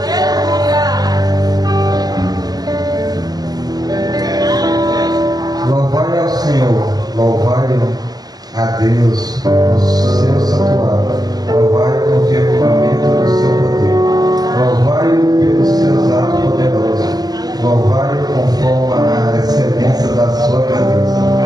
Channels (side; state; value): left; late; 0.19 ms